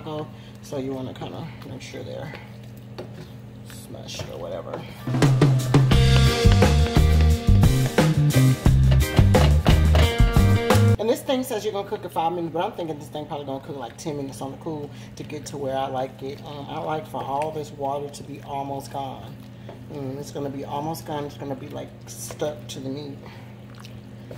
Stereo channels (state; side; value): identical; both; correlation 1.00